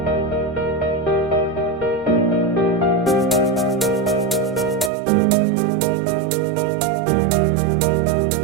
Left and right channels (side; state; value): left; drops out; at 4.9 s